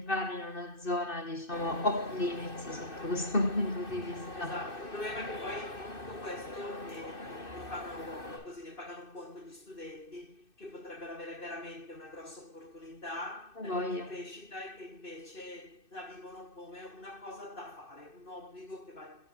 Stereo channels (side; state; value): right; late; 2.6 ms